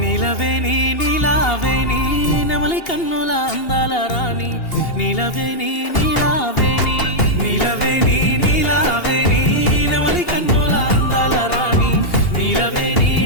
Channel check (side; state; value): right; late; 2.8 ms